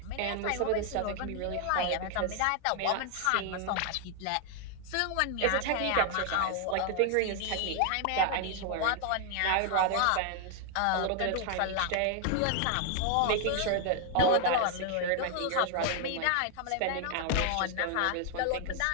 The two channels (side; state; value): both; different; correlation 0.00